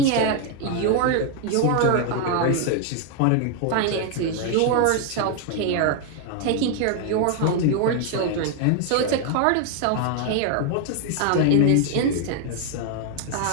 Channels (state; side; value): different; both; correlation 0.00